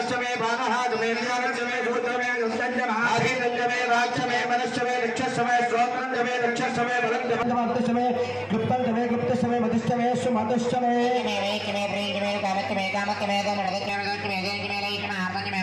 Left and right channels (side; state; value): both; identical; correlation 1.00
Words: బాణహాదమే జ్ఞానష్టమే సూత్రమే దుష్టంజమే రాజ్యమే మనష్టమే నిక్షష్టమే శ్రోత్రంజమే నిక్షష్టమే బలంజమే గుప్తంజమే గుప్తష్టమే మధుష్టమే సుమధుష్టమే